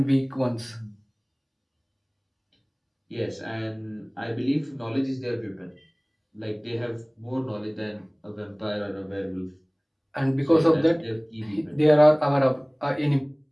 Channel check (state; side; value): identical; both; correlation 1.00